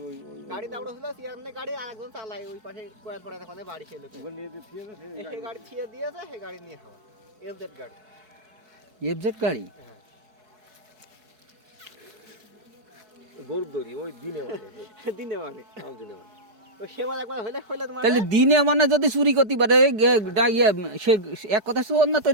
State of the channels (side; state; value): left; late; 4.7 ms